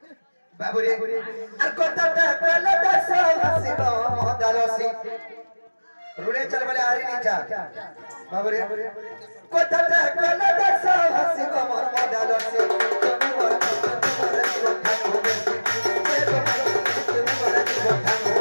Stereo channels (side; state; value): both; inverted; correlation -1.00